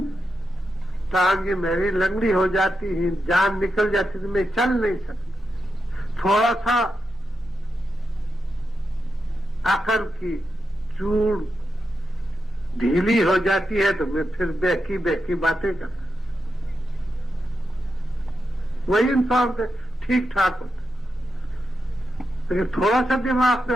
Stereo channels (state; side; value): normal; both; correlation 0.87